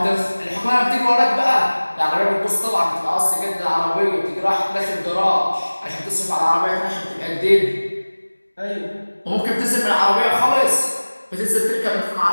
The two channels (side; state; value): both; inverted; correlation -1.00